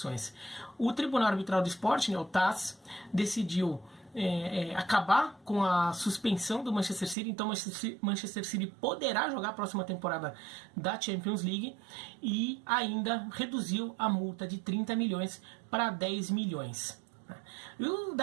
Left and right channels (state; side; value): drops out; left; at 7.2 s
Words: O Tribunal Arbitral do Esporte, o TAS, decidiu acabar com a suspensão do Manchester City. Então Manchester City poderá jogar a próxima temporada da Champions League e ainda reduziu a multa de 30 milhões para 10 milhões. E